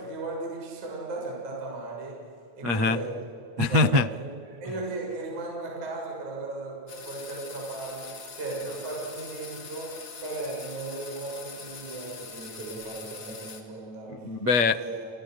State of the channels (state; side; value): late; left; 8.7 ms